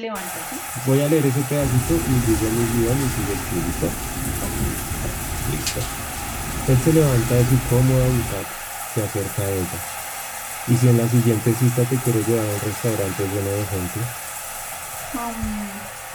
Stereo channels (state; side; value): identical; both; correlation 1.00